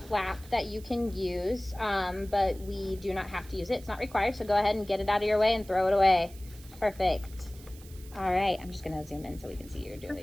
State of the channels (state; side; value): noise; right; hiss, 21 dB below the sound